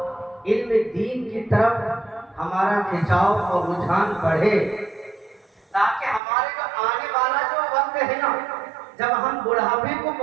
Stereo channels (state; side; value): drops out; left; at 6.2 s